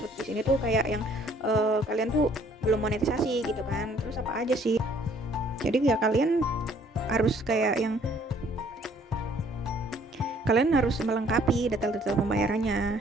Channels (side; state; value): both; normal; correlation 0.60